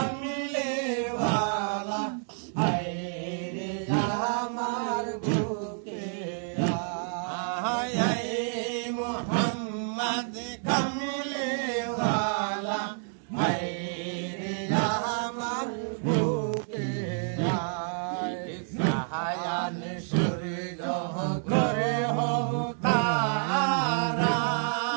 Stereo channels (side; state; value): left; silent; 58 dB below the other